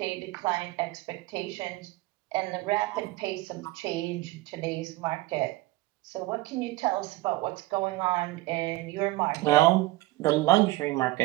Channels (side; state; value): left; quieter; 19.0 dB